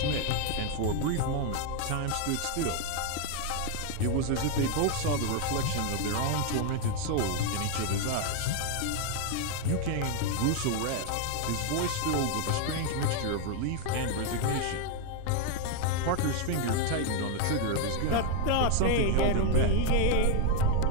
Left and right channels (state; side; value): different; both; correlation 0.00